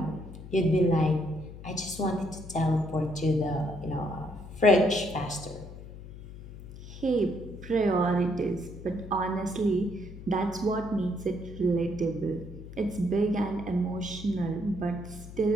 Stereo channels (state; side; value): noise; left; hum, 14 dB below the sound